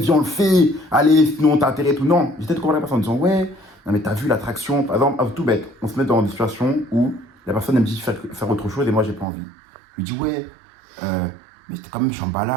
on le fait, allez, sinon t'as intérêt et tout. Non, j'essaie de convaincre la personne en disant, ouais, non, mais t'as vu l'attraction, par exemple, tout bête, on se met dans des situations où la personne elle me dit faire autre chose et moi, j'ai pas envie. Je lui dis, ouais, mais c'était quand même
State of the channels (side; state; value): left; drops out; at 9.2 s